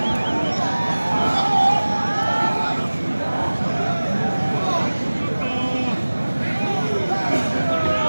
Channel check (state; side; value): inverted; both; correlation -1.00